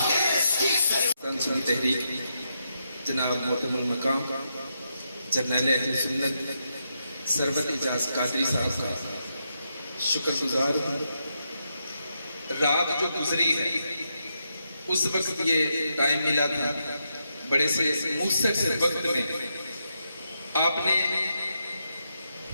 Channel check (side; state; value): both; inverted; correlation -0.82